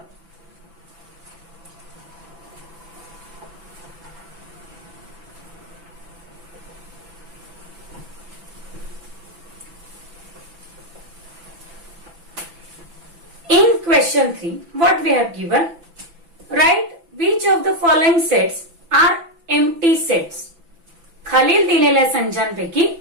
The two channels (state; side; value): late; left; 6.0 ms